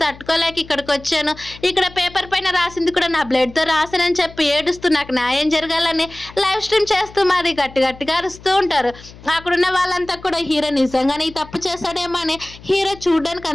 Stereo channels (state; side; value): noise; left; hum, 20 dB below the sound